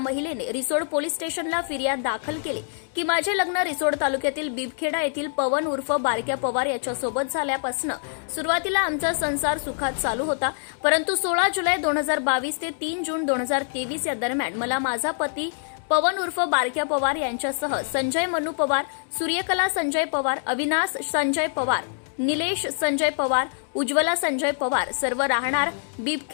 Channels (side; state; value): right; silent; digital silence